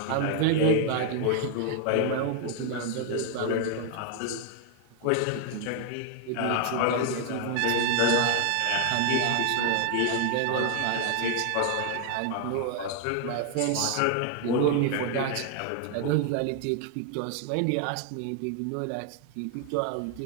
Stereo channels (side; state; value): both; different; correlation 0.00